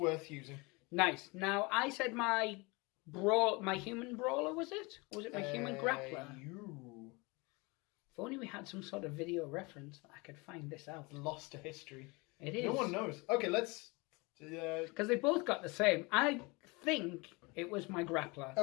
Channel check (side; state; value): right; quieter; 26.6 dB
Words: using. Nice. Now, I said my human brawler, was it? Or was it my human grappler? If only we had some sort of video reference that I could find this out. Lost to history. It is. No one knows. Okay, let's... Because they both got the same. I think it was my grappler.